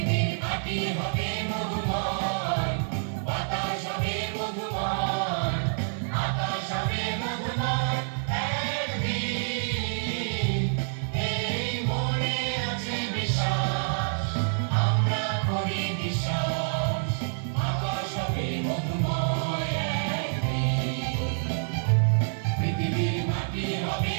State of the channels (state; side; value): silent; left; 60 dB below the other